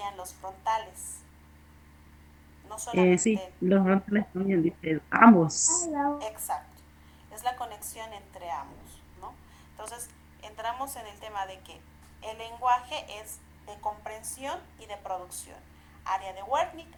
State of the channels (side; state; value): both; identical; correlation 1.00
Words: los frontales. No Sí, solamente. los frontales también, dice ambos. Exacto. Es la conexión entre ambos, ¿no? Entonces, entramos en el tema de que el lenguaje es de comprensión y de producción. Área de Wernicke,